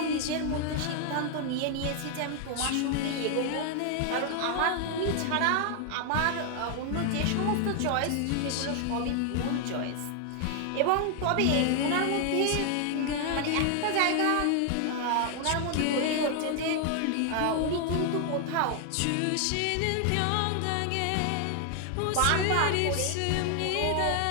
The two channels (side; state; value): both; different; correlation 0.00